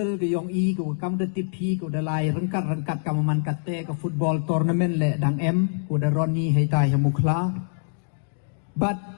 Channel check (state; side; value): silent; right; digital silence